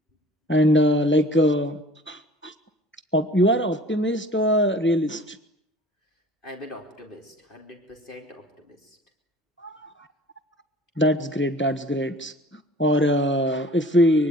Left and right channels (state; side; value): normal; both; correlation 0.47